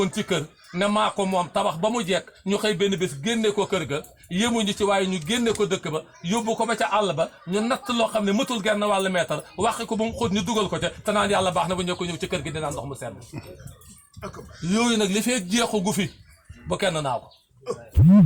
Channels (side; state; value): both; identical; correlation 1.00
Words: ci kër ne maa ko moom tabax ba mu jekk ñu xëy benn bés génne ko kër ga yémuñu ci waaye ñu génne ko dëkk ba yóbbu ko ba ca àll ba ñu natt loo xam ne mëtul genn wàllu meetar waxi ko ba mu xóot ñu dugal ko ca te naan yàlla baax na ba ñëw ko ñëw ci kër gi dinaan ndox mu sedd yooyu nag li feek jeexu gu fi bu kenn naa ko